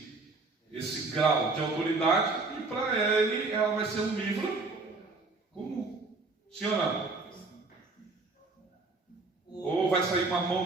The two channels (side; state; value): left; quieter; 3.7 dB